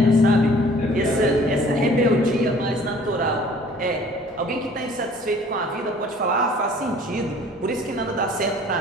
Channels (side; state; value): both; normal; correlation 0.52